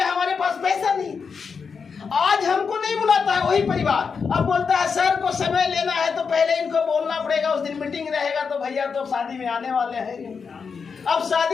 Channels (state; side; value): quieter; right; 5.7 dB